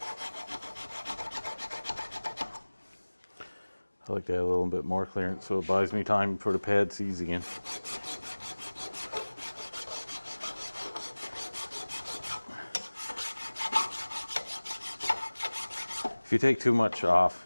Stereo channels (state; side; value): inverted; both; correlation -1.00